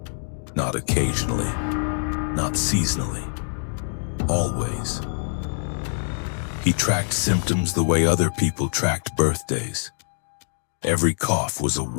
Not occasionally, not seasonally, always. He tracked symptoms the way other people tracked birthdays. Every cough was a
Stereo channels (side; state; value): right; silent; 62 dB below the other